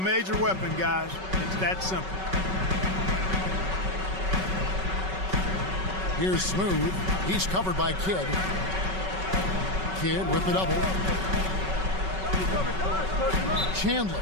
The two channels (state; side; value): late; left; 5.3 ms